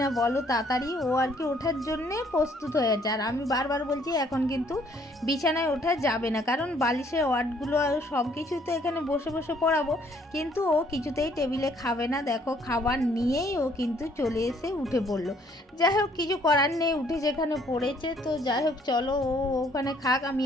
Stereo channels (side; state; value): both; normal; correlation 0.63